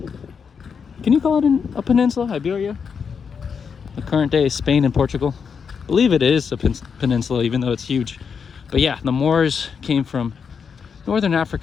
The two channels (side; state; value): right; quieter; 6.3 dB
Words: Can you call it a peninsula, Iberia? The current day is Spain and Portugal. I believe it is a peninsula, even though it's huge. But yeah, the Moors came from Northern